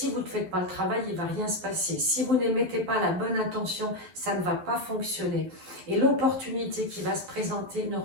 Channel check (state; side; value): late; left; 11 ms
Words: vous ne faites pas le travail, il ne va rien se passer. Si vous n'émettez pas la bonne intention, ça ne va pas fonctionner. Et l'opportunité qui va se présenter ne